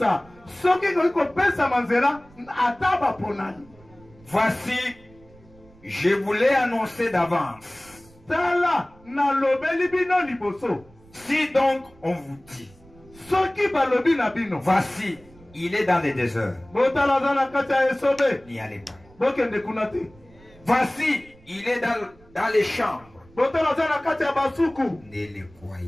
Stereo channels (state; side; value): noise; right; rumble, 26 dB below the sound